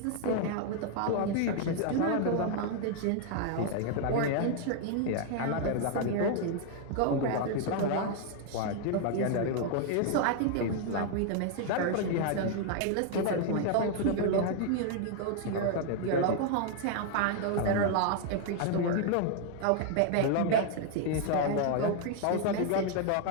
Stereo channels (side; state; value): both; different; correlation 0.00